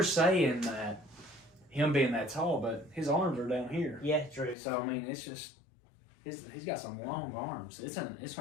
saying that him being that tall, but his arms are down here. Yeah, true. So I mean, it's just he's got some long arms. It's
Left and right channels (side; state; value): right; drops out; at 4.5 s